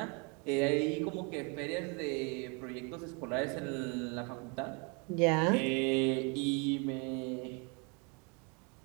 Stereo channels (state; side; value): quieter; left; 33.0 dB